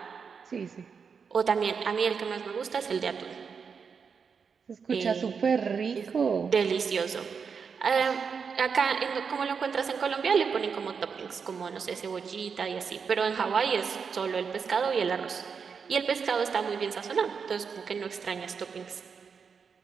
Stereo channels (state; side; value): quieter; left; 6.0 dB